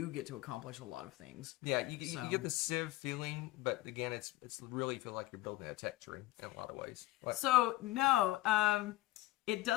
get to accomplish a lot of things. Yeah, you get the Civ feeling, but again, it's really feel like you're building a tech tree in a lot of ways. So no, it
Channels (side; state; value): right; quieter; 17.3 dB